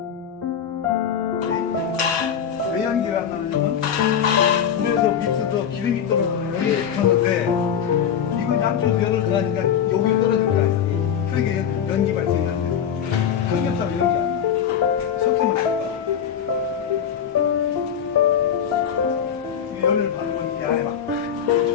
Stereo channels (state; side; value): quieter; right; 8.3 dB